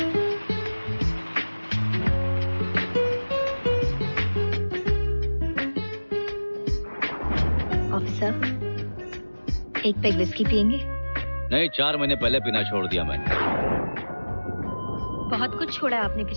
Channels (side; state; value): both; inverted; correlation -1.00